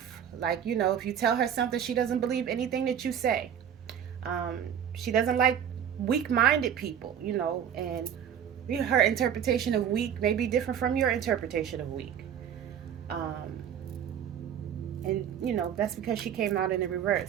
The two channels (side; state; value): left; quieter; 8.9 dB